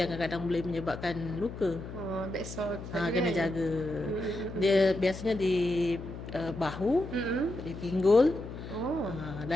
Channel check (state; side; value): noise; left; hum, 10 dB below the sound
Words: kadang-kadang boleh menyebabkan luka. Kena jaga. Dia biasanya di bahu, di pinggul,